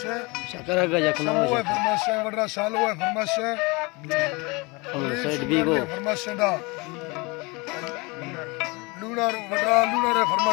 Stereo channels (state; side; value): quieter; right; 26.6 dB